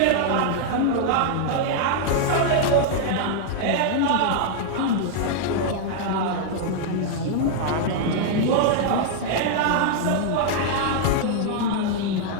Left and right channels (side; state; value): both; different; correlation -0.01